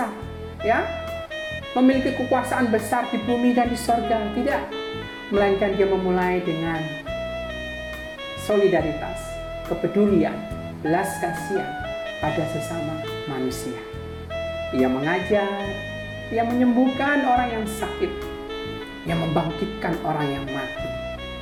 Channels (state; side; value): identical; both; correlation 1.00